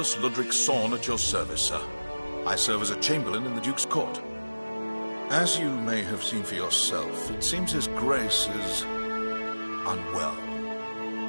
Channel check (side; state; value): both; inverted; correlation -1.00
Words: Ludric Sorn at your service, sir. I serve as a Chamberlain in the Duke's court. As you may have seen for yourself, it seems His Grace is unwell.